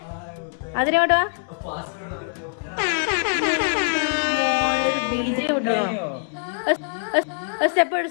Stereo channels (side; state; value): right; silent; digital silence